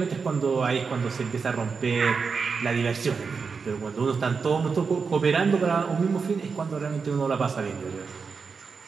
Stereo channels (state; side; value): quieter; left; 5.2 dB